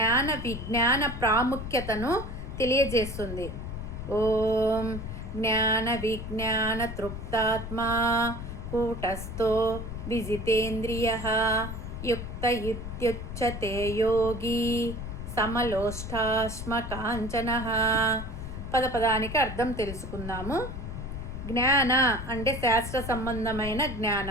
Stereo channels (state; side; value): noise; left; rumble, 7 dB below the sound